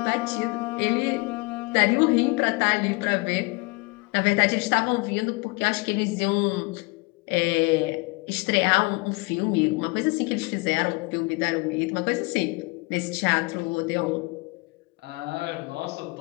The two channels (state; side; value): quieter; right; 27.1 dB